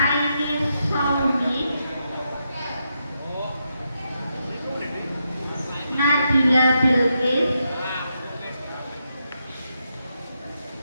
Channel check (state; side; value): inverted; both; correlation -0.83